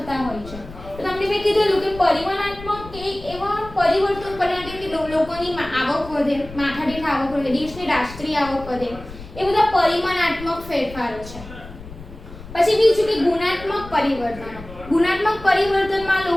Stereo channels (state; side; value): noise; left; rumble, 15 dB below the sound